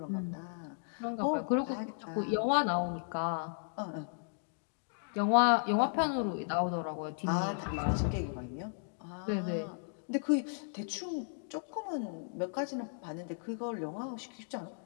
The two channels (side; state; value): right; silent; digital silence